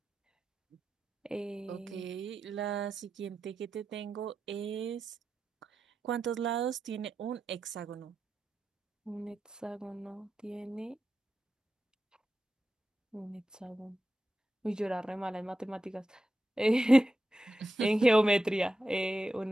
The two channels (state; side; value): normal; both; correlation 0.90